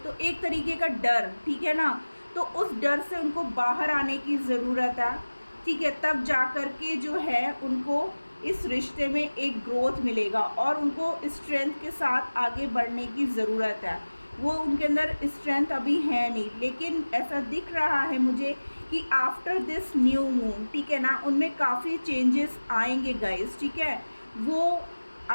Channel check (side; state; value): both; inverted; correlation -1.00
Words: एक तरीके का डर, ठीक है ना। तो उस डर से उनको बाहर आने की ज़रूरत है, ठीक है। तब जा कर के जो है उनको इस रिश्ते में एक ग्रोथ मिलेगा और उनको स्ट्रेंथ के साथ आगे बढ़ने की ज़रूरत है। वो उनके अंदर स्ट्रेंथ अभी है नहीं, लेकिन ऐसा दिख रहा है मुझे कि आफ्टर दिस न्यू मून, ठीक है ना, उनमें काफ़ी चेंजेस आएंगे गाइस, ठीक है। वो